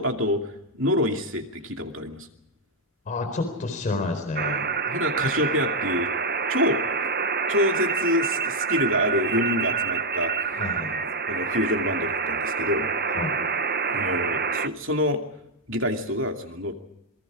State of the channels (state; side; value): normal; both; correlation 0.00